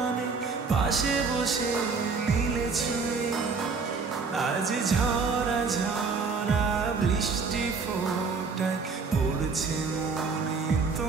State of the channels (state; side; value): quieter; left; 4.7 dB